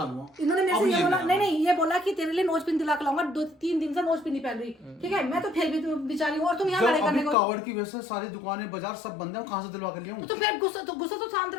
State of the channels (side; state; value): right; drops out; at 7.4 s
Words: लूंगा। इन्होंने मेरे अब से ये बोला, नहीं नहीं ये बोला कि तेरे लिए नोज पिन दिला के लाऊंगा, 2-3 दिन से नोज पिन नहीं पहन रही, ठीक है। मैं तो फिर भी बेचारी हूँ, और तुम यहाँ जब लड़ाई करने अभी को। कावड़ की वजह से सारी दुकानें बाजार सब बंद है, कहाँ से दिलवा कर लिया हूँ? तो फिर गुस्सा तो शांत